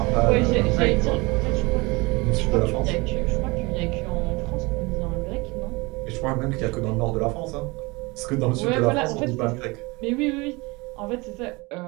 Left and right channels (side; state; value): left; quieter; 25.0 dB